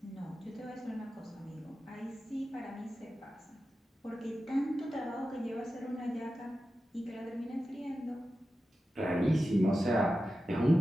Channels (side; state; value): both; normal; correlation 0.92